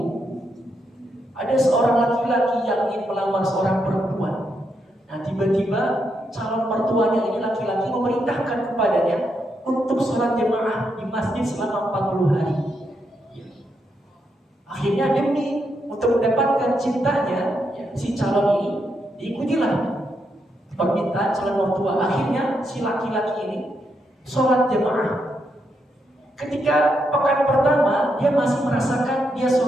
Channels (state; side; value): normal; both; correlation 0.81